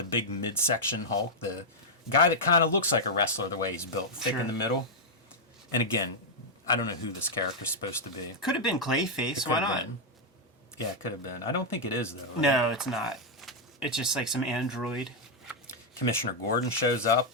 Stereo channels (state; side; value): normal; both; correlation -0.04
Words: big midsection Hulk, the guy that kind of looks like a wrestler the way he's built, thick in the middle. And again, I don't know who this character's supposed to be. Could have been Clayface, why not? Yeah, it could have been. I don't think it is, though. Right? No, it's not. It's just like some android. Commissioner Gordon shows up.